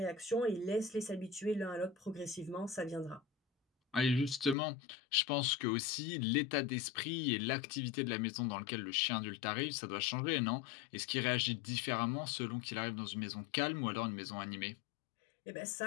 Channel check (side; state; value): right; drops out; at 4.5 s